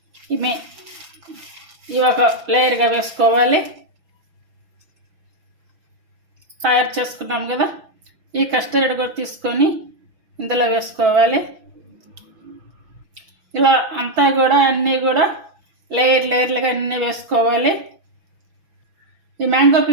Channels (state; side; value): late; left; 6.0 ms